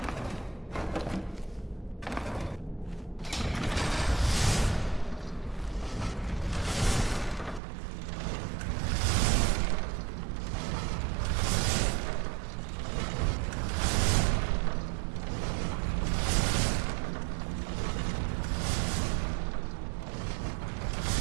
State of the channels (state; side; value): drops out; left; at 7.6 s